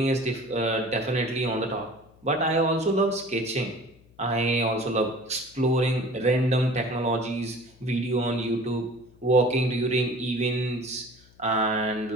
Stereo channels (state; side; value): noise; left; hum, 28 dB below the sound